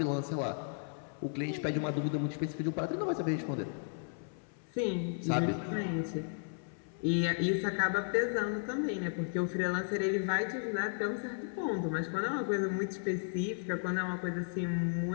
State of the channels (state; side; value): silent; right; 55 dB below the other